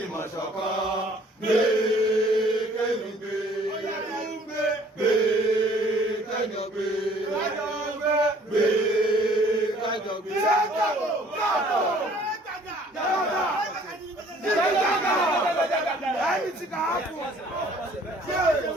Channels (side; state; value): both; normal; correlation 0.56